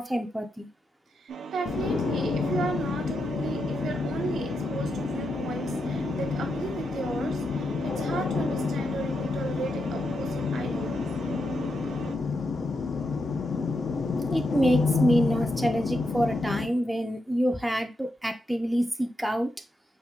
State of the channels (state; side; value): normal; both; correlation 0.84